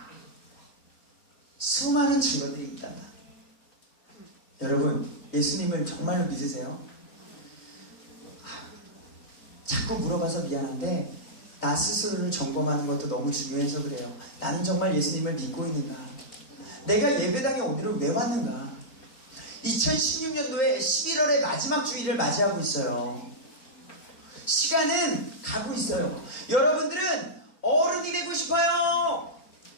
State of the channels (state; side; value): late; right; 3.9 ms